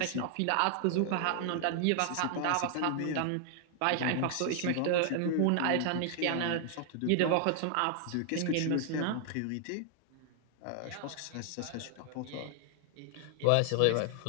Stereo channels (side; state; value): both; different; correlation 0.00